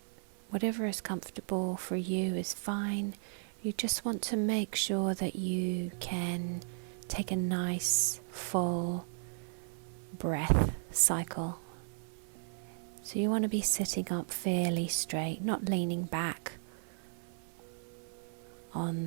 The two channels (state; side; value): silent; left; 54 dB below the other